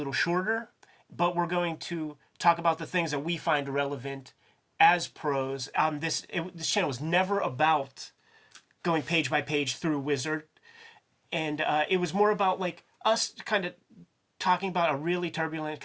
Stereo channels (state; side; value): identical; both; correlation 1.00